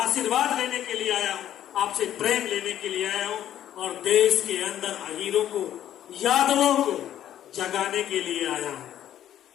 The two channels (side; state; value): right; quieter; 11.4 dB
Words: आशीर्वाद लेने के लिए आया हूं, आपसे प्रेम लेने के लिए आया हूं और देश के अंदर अमीरों को, यादवों को जगाने के लिए आया हूं।